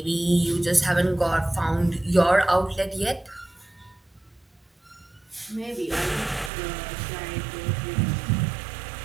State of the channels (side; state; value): left; drops out; at 6.5 s